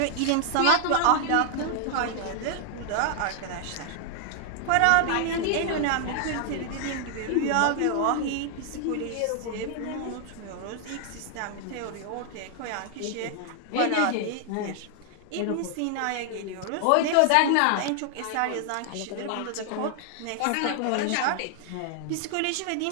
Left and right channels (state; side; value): different; both; correlation 0.00